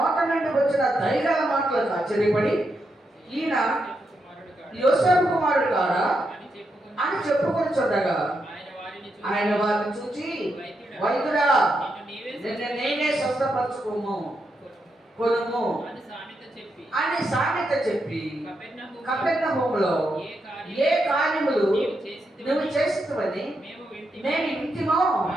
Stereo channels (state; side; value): normal; both; correlation 0.83